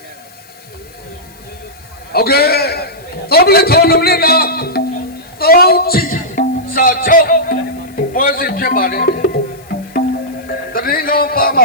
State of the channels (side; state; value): left; noise; hiss, 26 dB below the sound